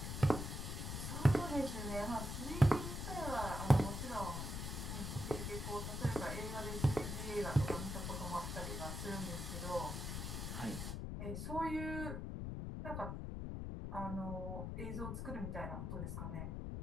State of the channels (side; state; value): left; noise; rumble, 4 dB below the sound